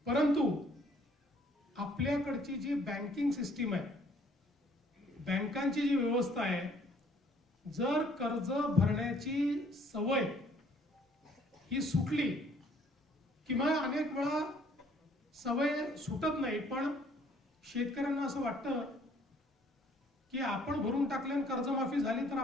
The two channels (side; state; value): both; normal; correlation 0.60